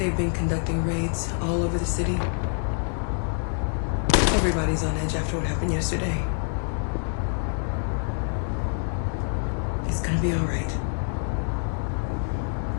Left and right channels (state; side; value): silent; right; 55 dB below the other